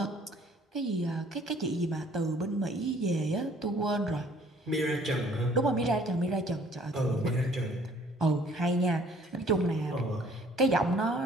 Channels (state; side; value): normal; both; correlation 0.57